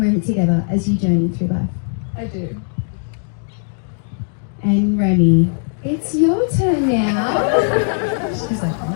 together as you journey through life? I do. And Remy, it's your turn now. She's like,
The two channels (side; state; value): right; silent; 61 dB below the other